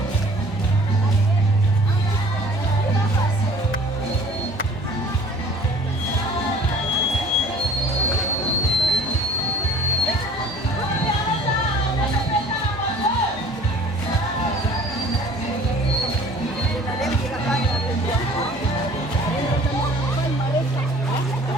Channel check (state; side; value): noise; left; hum, 20 dB below the sound